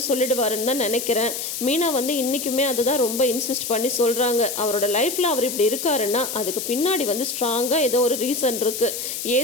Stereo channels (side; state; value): left; noise; hiss, 5 dB below the sound